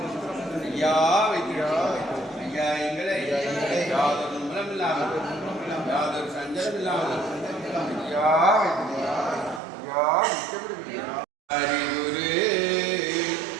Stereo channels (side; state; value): left; drops out; at 9.6 s